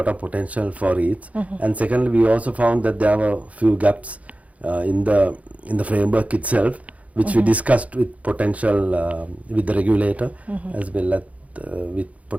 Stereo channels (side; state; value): left; late; 0.068 ms